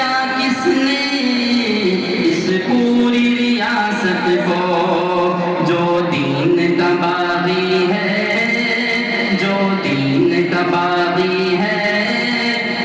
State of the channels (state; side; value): identical; both; correlation 1.00